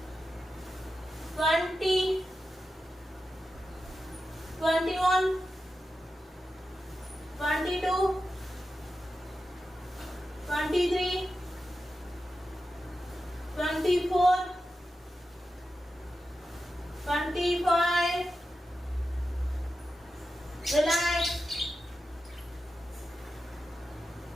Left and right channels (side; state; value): both; normal; correlation 0.91